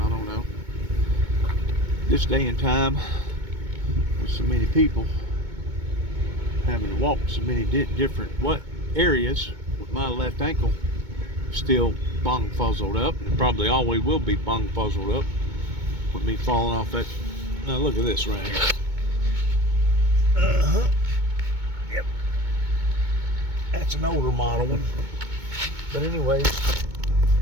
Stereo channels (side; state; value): left; late; 2.2 ms